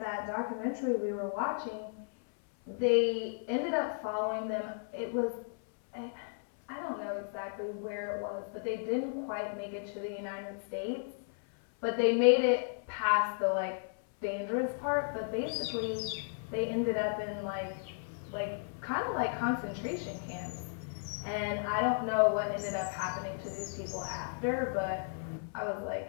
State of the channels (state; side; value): silent; right; 55 dB below the other